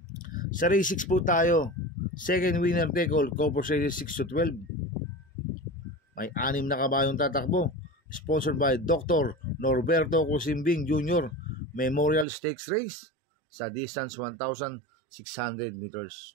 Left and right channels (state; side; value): drops out; left; at 12.2 s